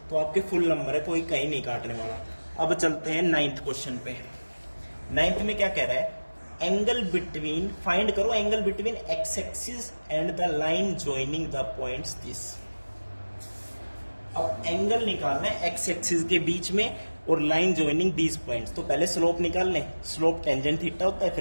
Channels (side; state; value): both; inverted; correlation -1.00